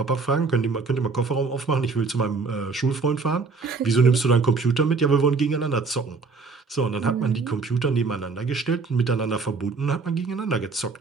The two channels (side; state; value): left; quieter; 4.4 dB